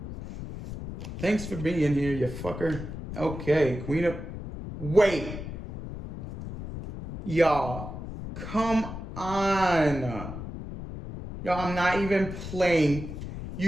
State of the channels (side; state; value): left; noise; rumble, 9 dB below the sound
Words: Thanks for being here, you fucker. Okay, Queen of... Wait. Y'all, come on. Y'all, I'm not even playing.